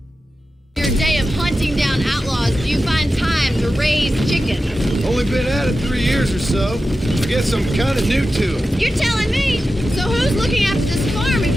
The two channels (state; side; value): normal; both; correlation 0.92